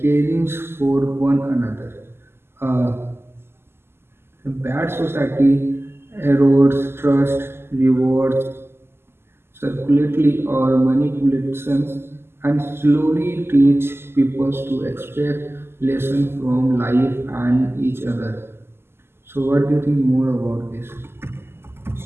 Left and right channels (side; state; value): left; late; 0.12 ms